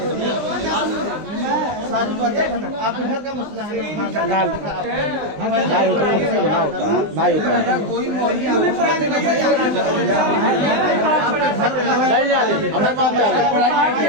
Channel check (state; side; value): late; left; 20 ms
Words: सारी बातें आपके घर का मसला है